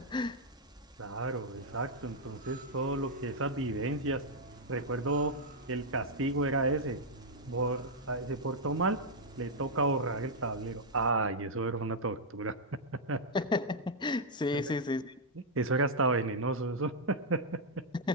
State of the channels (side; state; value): both; normal; correlation -0.04